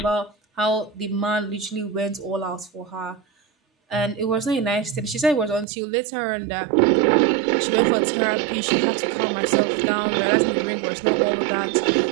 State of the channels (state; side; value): drops out; left; at 5.7 s